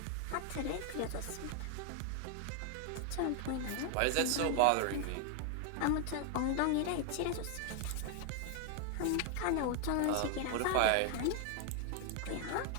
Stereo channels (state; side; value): different; both; correlation 0.00